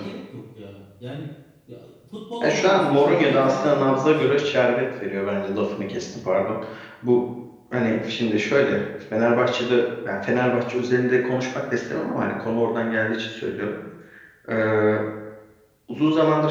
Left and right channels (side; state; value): both; identical; correlation 1.00